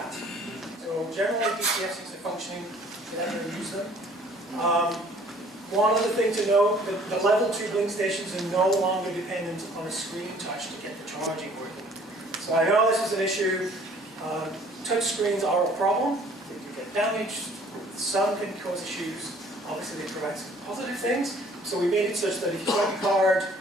So generally DCFCs are functioning, get out there and use them. One other thing to note, the level 2 Blink stations are no longer dependent on a screen touch to get the charging working. So I know this is an issue. Touch screens are a problem. They can get damaged. Some can cause issues. Obviously, they provide some positive things. So we made it such that if you swipe your card,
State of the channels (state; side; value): normal; both; correlation 0.55